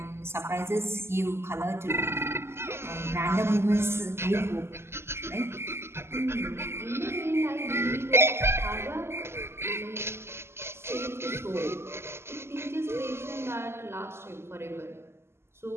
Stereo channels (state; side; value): late; left; 0.12 ms